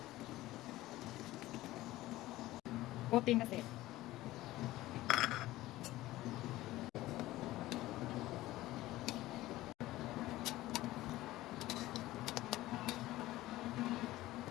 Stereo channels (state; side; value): quieter; right; 16.8 dB